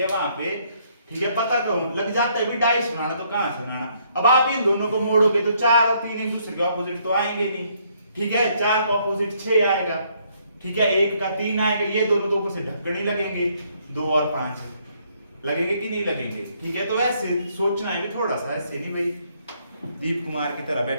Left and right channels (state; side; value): inverted; both; correlation -0.69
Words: वहां पे ठीक है पता क्यों लग जाता है भी डाइस बनाना तो कहां से बनाना। अब आप इन दोनों को मोड़ोगे तो 4 और 3 एक दूसरे के ऑपोजिट तो आएंगे नहीं। ठीक है, 4 का ऑपोजिट 6 आएगा। ठीक है, 1 का 3 आएगा, ये दोनों तो ऊपर से ढक्कन ही लगेंगे। 2 और 5 लगेंगे कि नहीं लगेंगे। ठीक है, तो ऐसे सोचना है भी थोड़ा सा, ऐसे नहीं भाई दीप कुमार की तरह